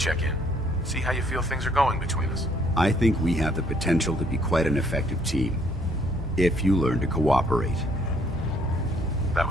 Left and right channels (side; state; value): both; normal; correlation 0.65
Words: in. See how you feel things are going between us. I think we have the potential to be quite an effective team, if you learn to cooperate. That